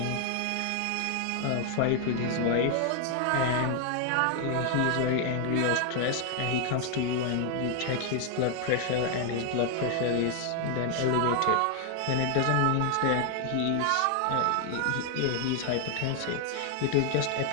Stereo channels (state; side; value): different; both; correlation 0.00